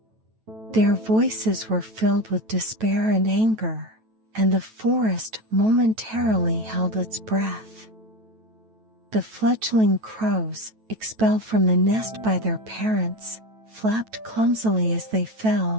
Their voices were filled with despair and anger, and the forest momentarily held its breath. The fledgling crows, expelled from the nest by their parents, flapped clumsily as they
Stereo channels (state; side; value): late; left; 9.1 ms